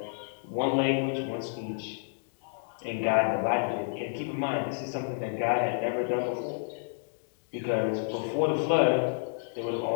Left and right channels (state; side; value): silent; right; digital silence